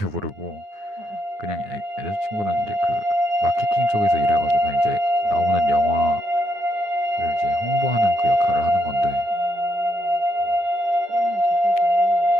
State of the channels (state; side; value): late; left; 9.6 ms